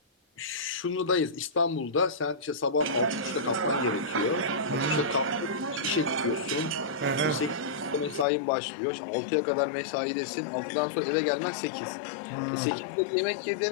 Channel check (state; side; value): drops out; right; at 8.2 s